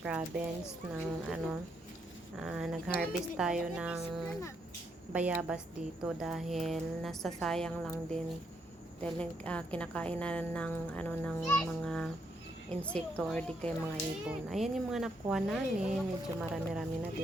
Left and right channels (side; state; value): both; normal; correlation 0.76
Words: ng nag-harvest tayo ng bayabas dito dahil nasasayang lang din dahil kinakain na ng mga insekto or di kaya mga ibon. Ayan yung mga nakuha namin, medyo marami-rami na